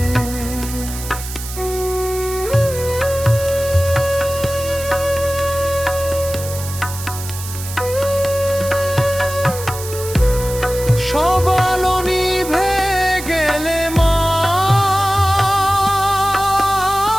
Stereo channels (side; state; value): right; noise; hiss, 11 dB below the sound